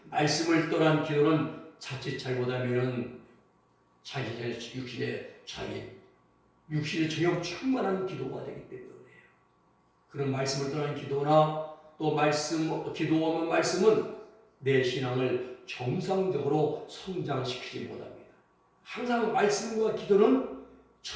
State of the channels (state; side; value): identical; both; correlation 1.00